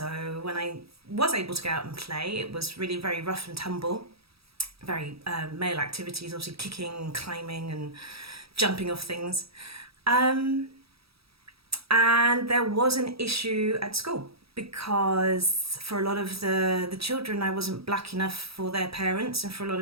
when I was able to go out and play, it was really very rough and tumble, very male activities, obviously kicking, climbing, and jumping off things. And there was an issue at school, because for a lot of the children, I wasn't black enough for their parents, and for a lot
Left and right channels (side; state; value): left; late; 0.77 ms